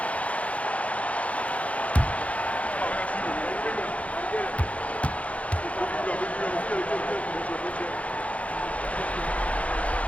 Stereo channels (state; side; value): late; right; 0.065 ms